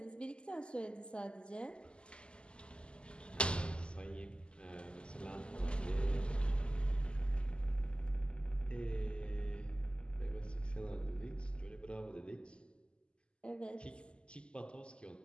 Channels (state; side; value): late; right; 0.051 ms